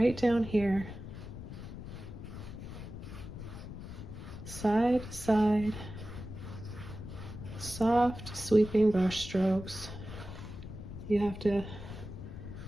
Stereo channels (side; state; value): left; noise; rumble, 10 dB below the sound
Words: down here, side to side, soft sweeping brush strokes. You have to